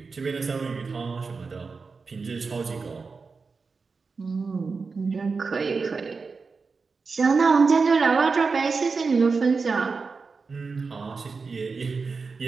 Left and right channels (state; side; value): quieter; left; 4.6 dB